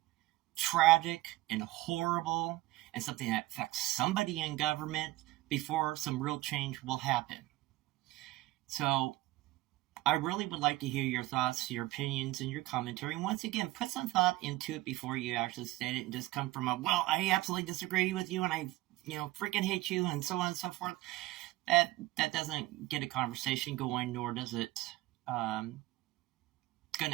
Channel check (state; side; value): quieter; left; 18.7 dB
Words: tragic and horrible and something that affects somebody in government before some real change will happen. So I really would like to hear your thoughts, your opinions, and your commentary. And once again, put some thought into it before you actually state it and just come from a, well, I absolutely disagree with you and I, freaking hate you and so on and so forth. That doesn't get a conversation going, nor does it going